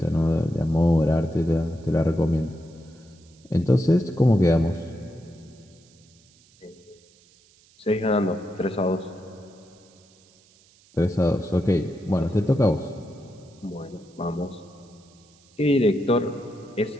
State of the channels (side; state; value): right; noise; hiss, 30 dB below the sound